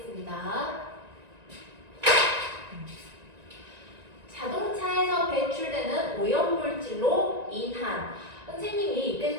자동차에서 배출되는 오염물질로 인한 선생님이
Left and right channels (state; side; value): late; left; 1.9 ms